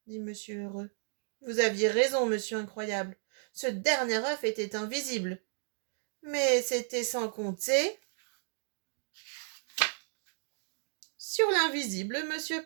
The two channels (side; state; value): left; silent; digital silence